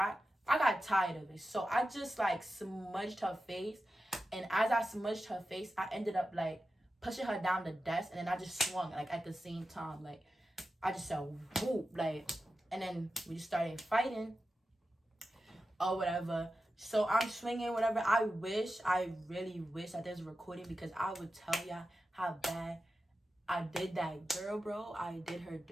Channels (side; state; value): both; normal; correlation 0.92